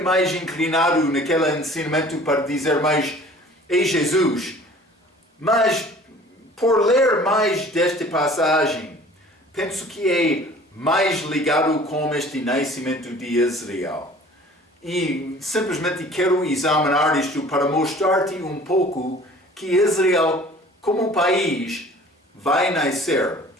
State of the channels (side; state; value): both; normal; correlation 0.48